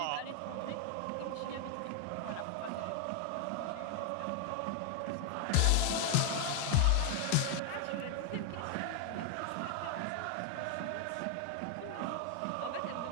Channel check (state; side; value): different; both; correlation 0.01